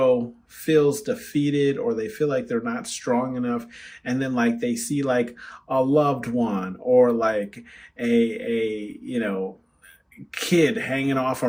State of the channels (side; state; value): both; identical; correlation 1.00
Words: feels defeated, or they feel like they're not strong enough, and then like they see like a loved one, or like a kid hanging off a